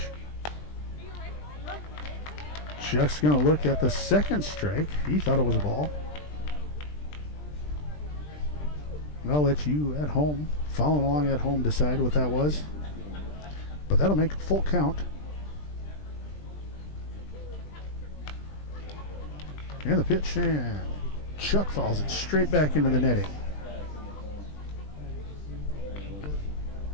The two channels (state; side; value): late; right; 20 ms